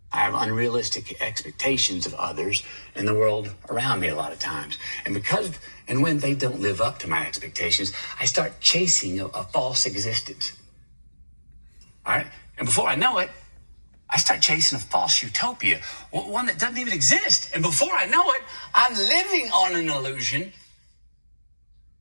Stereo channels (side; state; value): both; inverted; correlation -1.00